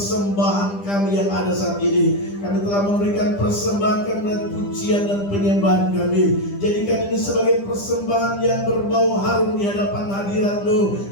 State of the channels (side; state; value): right; late; 10 ms